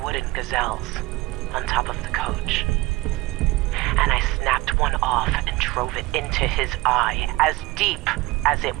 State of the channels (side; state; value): left; quieter; 20.5 dB